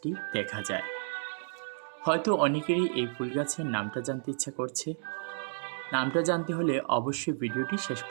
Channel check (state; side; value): silent; left; digital silence